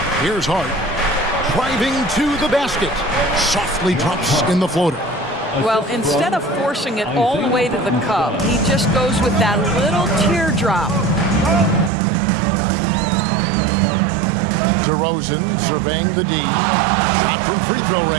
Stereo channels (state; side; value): drops out; left; at 11.9 s